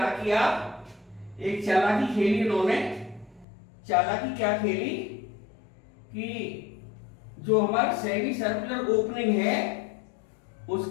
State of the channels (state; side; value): drops out; right; at 3.5 s